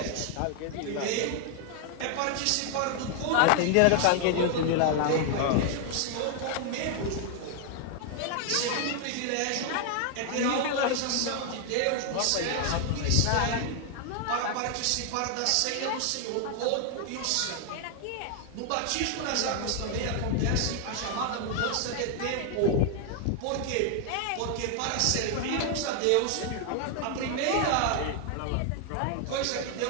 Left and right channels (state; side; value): different; both; correlation 0.00